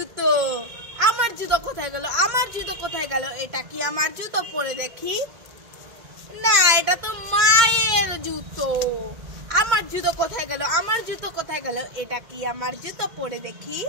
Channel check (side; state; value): left; late; 2.1 ms